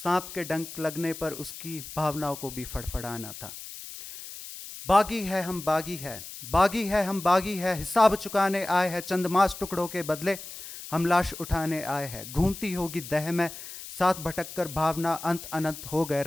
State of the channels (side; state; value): left; noise; hiss, 12 dB below the sound